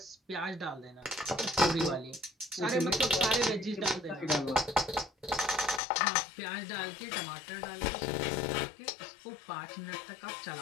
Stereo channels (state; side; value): drops out; right; at 5.8 s